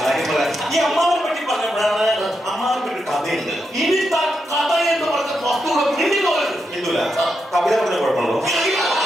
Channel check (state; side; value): normal; both; correlation 0.84